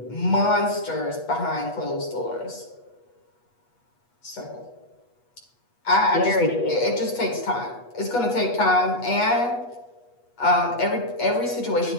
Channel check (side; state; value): right; late; 8.3 ms